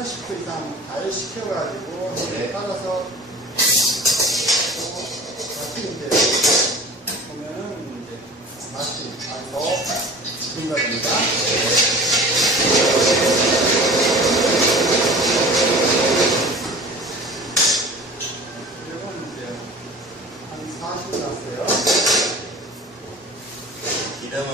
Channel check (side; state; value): both; normal; correlation 0.41